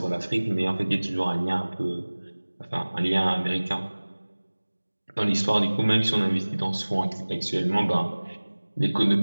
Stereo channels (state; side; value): inverted; both; correlation -1.00